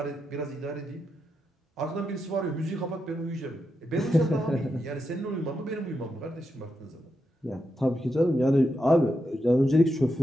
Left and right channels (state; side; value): normal; both; correlation 0.85